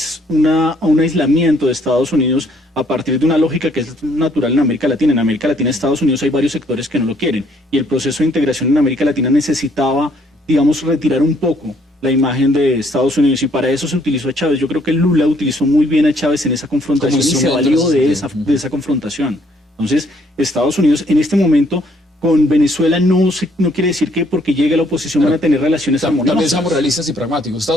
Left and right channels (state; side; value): normal; both; correlation 0.66